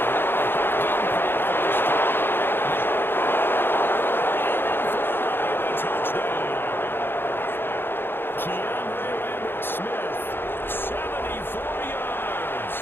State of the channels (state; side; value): late; right; 0.10 ms